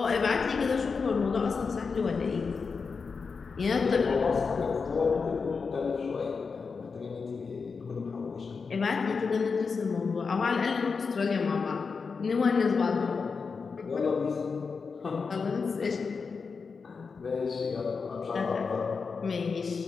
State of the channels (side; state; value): right; quieter; 5.1 dB